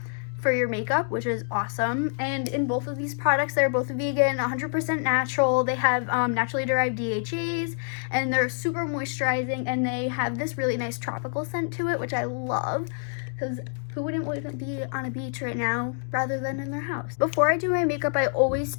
for your makeup, which is awesome. And in both of these products, they're both vegan, 100% natural. They have naturally derived DHAs, and they're super moisturizing, and they have this really nice tropical scent to it, which I love because who wouldn't want to be on a beach right now rather than in their house? Before I do my makeup, I always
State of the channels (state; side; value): silent; right; digital silence